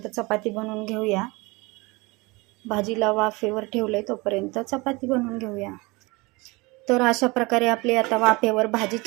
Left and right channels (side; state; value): left; quieter; 24.7 dB